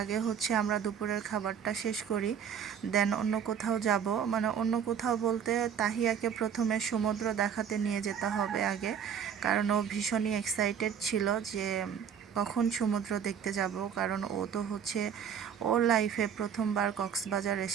হচ্ছে আমরা দুপুরের খাবারটা শেষ করি, দেন অন্য কোথাও যাব। মানে অন্য কোথাও বলতে তাহিয়াকে প্রথমে সমুদ্র দেখাতে নিয়ে যেতে হবে আগে, কারণ ও ভীষণই এক্সাইটেড ছিল যে কখন সমুদ্র দেখতে যাব। কারণ ও তো হচ্ছে ওর লাইফে প্রথমবার কক্সবাজার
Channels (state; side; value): quieter; left; 8.0 dB